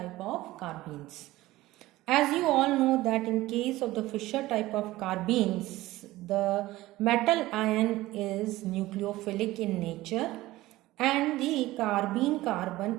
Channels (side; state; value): left; quieter; 17.5 dB